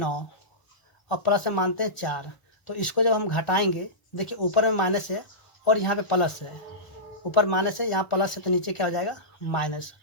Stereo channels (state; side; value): late; right; 1.0 ms